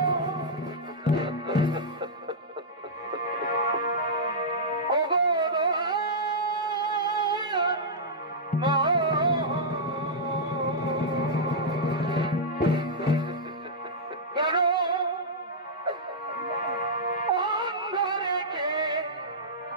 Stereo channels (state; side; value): normal; both; correlation -0.10